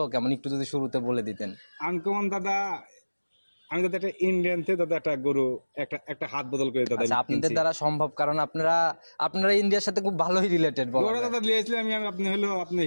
কেমন একটু যদি শুরুতে বলে দিতেন। আনকমন দাদা আমি দাদা একটা ইন্ডিয়ান থেকে দাদা একটা গরু একটা হাত বদল করে দাদা। আপনাদের দ্বারা সম্ভব, কারণ আপনারা ইন্ডিয়ার সাথে খুব ভালোই রিলেটেড। দাদা লিয়েছিলাম আপনি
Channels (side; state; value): both; inverted; correlation -1.00